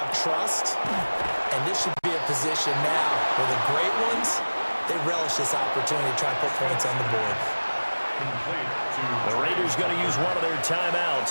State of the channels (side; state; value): both; inverted; correlation -1.00